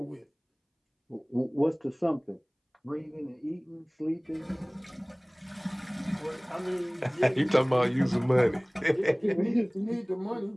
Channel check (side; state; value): both; identical; correlation 1.00